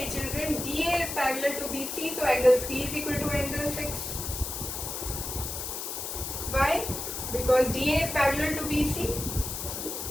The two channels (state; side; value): noise; left; hiss, 5 dB below the sound